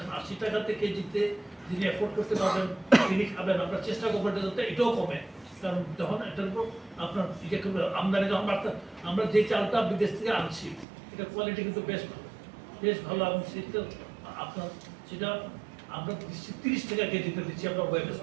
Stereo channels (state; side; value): drops out; left; at 10.9 s